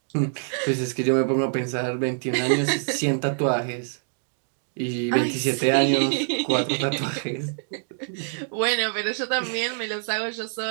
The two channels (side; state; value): left; silent; digital silence